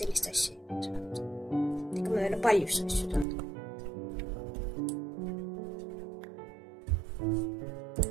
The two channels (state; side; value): drops out; left; at 3.2 s